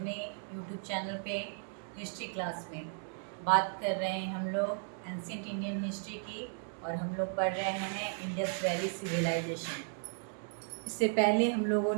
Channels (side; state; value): left; silent; 54 dB below the other